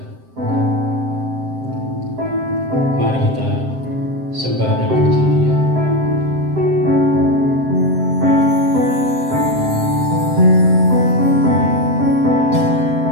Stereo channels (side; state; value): left; late; 7.7 ms